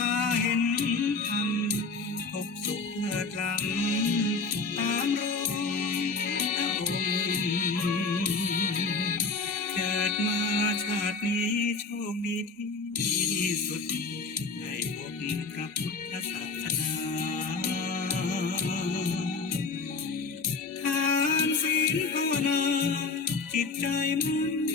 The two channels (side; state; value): right; quieter; 4.2 dB